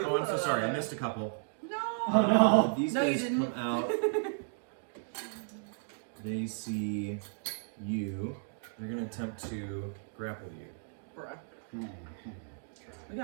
I'm so sorry. I missed a couple. No. Oh no. These No, you guys didn't. come out. They see you. They're going to attempt to grapple you. Bruh. We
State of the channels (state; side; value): silent; left; digital silence